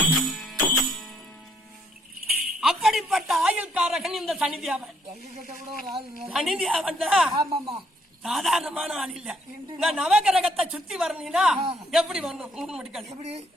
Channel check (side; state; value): both; normal; correlation 0.69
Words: அப்படிப்பட்ட ஆயுள்காரகன் இந்த சனிதேவன். எங்ககிட்ட கூட ஒரு ஆள் சனிதேவன் ஆமாமா சாதாரணமான ஆள் இல்ல. நான் நவகிரகத்தை சுத்தி வரணும்னா எப்படி வரணும்? மூணு மணிக்கால் எப்படி